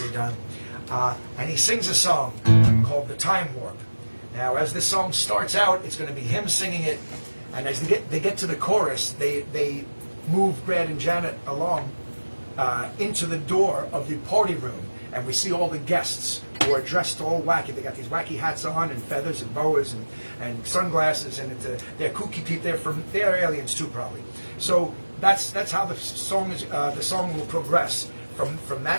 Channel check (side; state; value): both; inverted; correlation -1.00